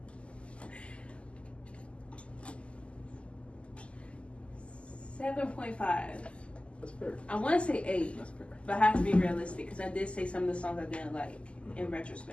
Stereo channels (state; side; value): late; right; 0.056 ms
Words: 7.5. That's fair. I want to say 8. That's fair. But I have to be realistic because I did say some of the songs I didn't like in